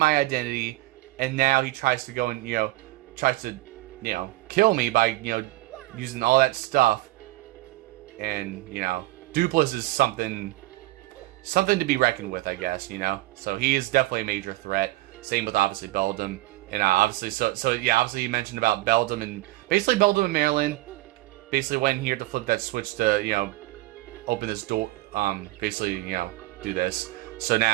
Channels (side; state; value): left; quieter; 18.4 dB